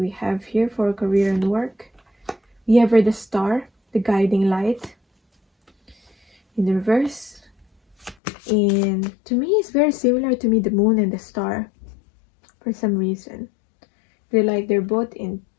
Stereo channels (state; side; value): drops out; right; at 8.2 s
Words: have here for career and work? We have the star, the guiding light, in the reverse. And to me, it's very similar to me, the moon and the star, for some reason. They're both in